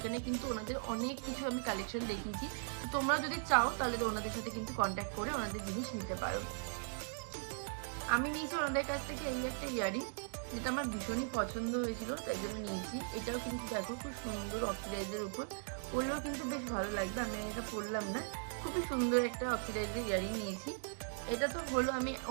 কিন্তু ওনাদের অনেক কিছু আমি কালেকশন দেখিয়েছি। তোমরা যদি চাও তাহলে তো ওনাদের সাথে কিন্তু কন্ট্যাক্ট করে ওনাদের জিনিস নিতে পারো। আমি নিয়েছি ওনাদের কাছ থেকে এই একটা ইয়ারিং, যেটা আমার ভীষণই পছন্দ হয়েছিল, তাই জন্য নিয়েছি। এটাও কিন্তু দেখো খুব সুন্দর অক্সিডাইজের উপর, পরলেও কিন্তু বেশ ভালো লাগবে। আমি এটা পরলাম না, খুবই সুন্দর একটা অক্সিডাইজের ইয়ারিং নিয়েছি। এটা তো হলো আমি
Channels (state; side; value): silent; left; digital silence